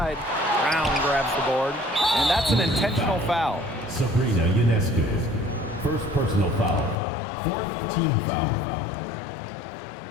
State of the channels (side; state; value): right; drops out; at 7.0 s